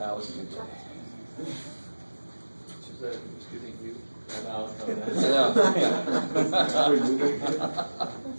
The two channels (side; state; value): both; inverted; correlation -1.00